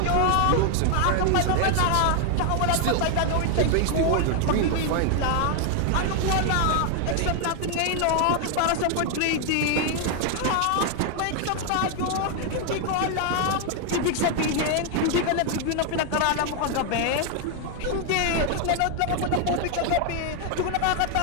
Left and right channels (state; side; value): different; both; correlation 0.00